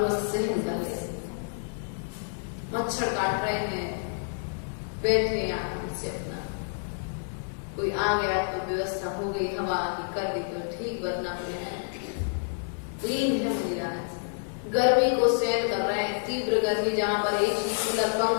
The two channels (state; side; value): silent; right; 59 dB below the other